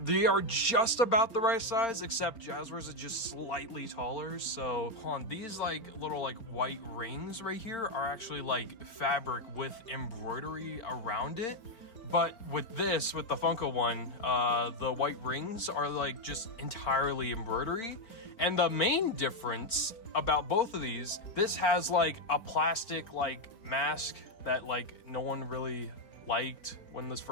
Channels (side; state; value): right; late; 4.4 ms